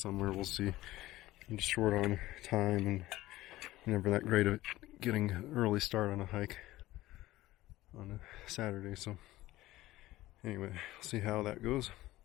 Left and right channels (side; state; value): right; quieter; 16.7 dB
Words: We'll see. I'm just short on time and never that great at getting an early start on a hike on a Saturday. So anyway, we'll see how that goes.